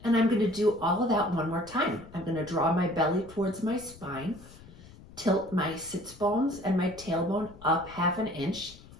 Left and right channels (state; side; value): noise; left; rumble, 20 dB below the sound